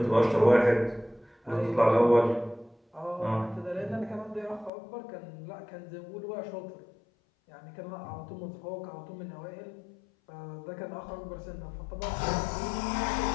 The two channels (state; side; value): drops out; right; at 4.7 s